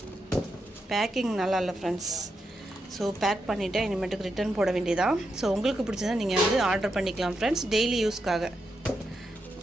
பேக்கிங் நல்லா இல்லை ஃப்ரெண்ட்ஸ். ஸோ பேக் பண்ணிவிட்டேன், இனிமேட்டுக்கு ரிட்டர்ன் போட வேண்டியதான். ஸோ உங்களுக்கு பிடிச்சதா நீங்கள் வந்து ஆர்டர் பண்ணிக்கலாம் ஃப்ரெண்ட்ஸ், டெய்லி யூஸ்க்காக.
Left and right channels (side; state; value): both; normal; correlation 0.84